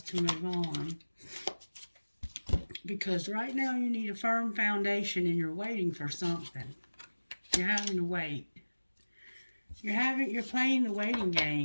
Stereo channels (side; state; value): both; inverted; correlation -1.00